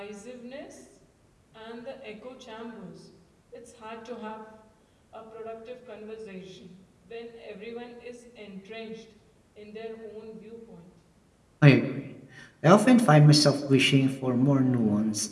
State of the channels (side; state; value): both; identical; correlation 1.00